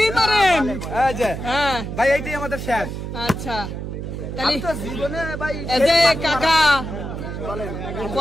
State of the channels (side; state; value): right; noise; hum, 6 dB below the sound